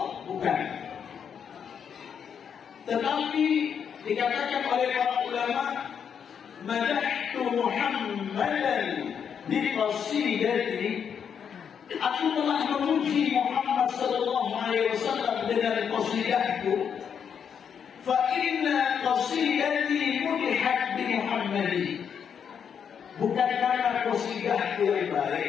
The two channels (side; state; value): right; quieter; 7.5 dB